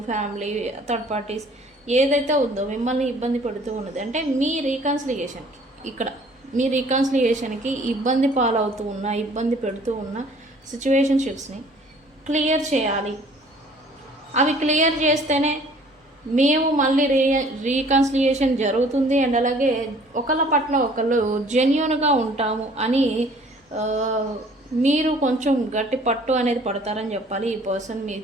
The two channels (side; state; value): both; normal; correlation 0.54